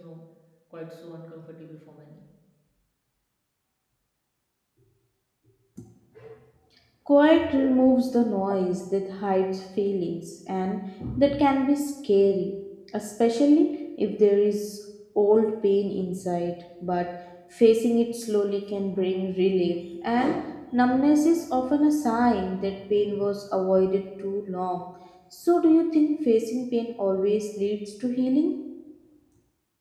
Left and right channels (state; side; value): identical; both; correlation 1.00